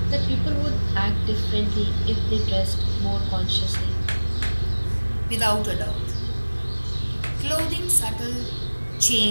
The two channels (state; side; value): inverted; both; correlation -1.00